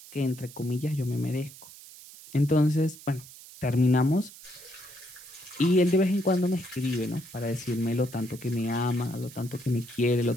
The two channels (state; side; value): noise; right; hiss, 18 dB below the sound